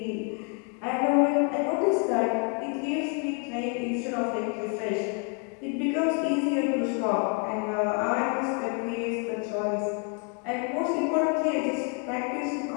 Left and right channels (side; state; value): right; quieter; 37.0 dB